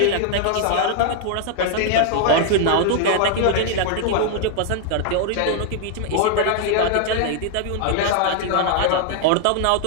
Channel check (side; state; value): both; different; correlation 0.00